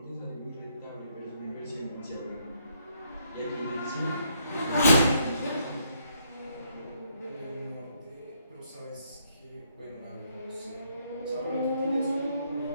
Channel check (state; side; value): inverted; both; correlation -0.72